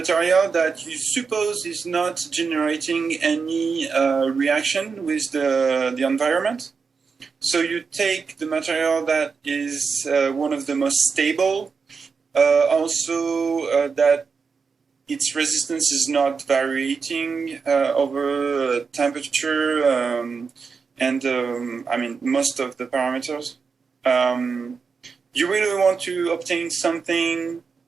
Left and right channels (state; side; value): quieter; left; 5.3 dB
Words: that you suppose is not generating any reaction with the environment. So you take the material that is one of the most stable, also that its resistance is not varying over temperature and most of the parameters. You really want to obtain something